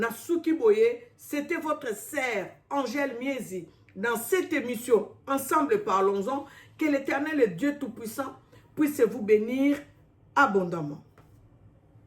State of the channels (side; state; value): both; identical; correlation 1.00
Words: Boye, c'était votre sœur Angèle Miezi. Dans cette émission, ensemble parlons-en, que l'Éternel et Dieu Tout-Puissant puisse vous bénir abondamment.